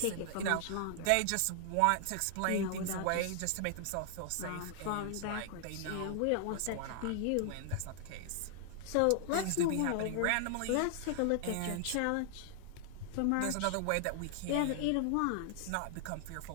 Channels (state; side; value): different; both; correlation 0.00